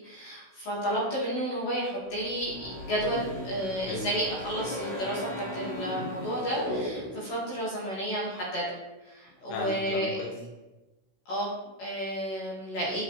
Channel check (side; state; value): right; late; 16 ms